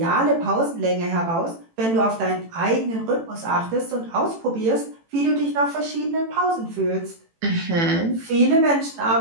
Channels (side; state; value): left; late; 18 ms